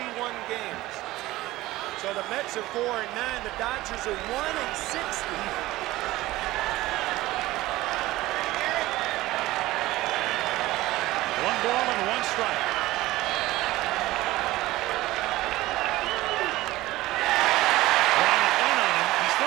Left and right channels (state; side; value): quieter; left; 17.6 dB